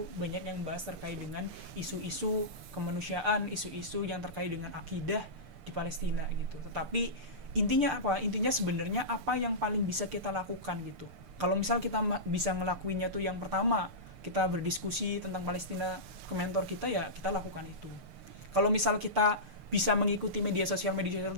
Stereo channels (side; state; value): left; late; 6.7 ms